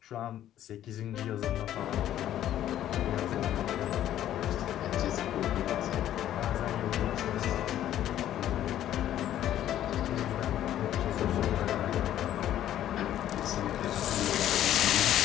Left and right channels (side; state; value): right; quieter; 11.9 dB